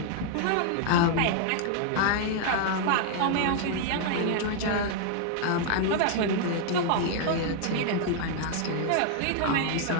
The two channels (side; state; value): both; different; correlation 0.00